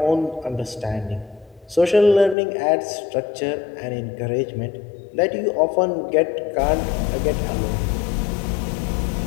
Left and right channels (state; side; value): drops out; right; at 2.4 s